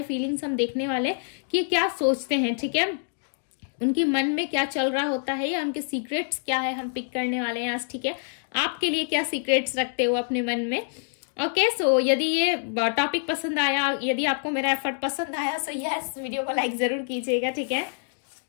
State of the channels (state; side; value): silent; right; digital silence